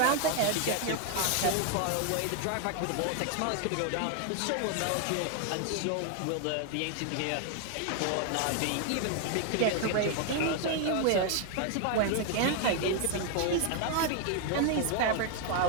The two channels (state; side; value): different; both; correlation 0.00